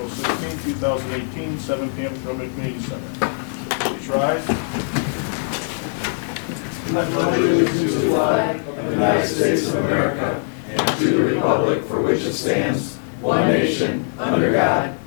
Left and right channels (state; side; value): silent; right; 65 dB below the other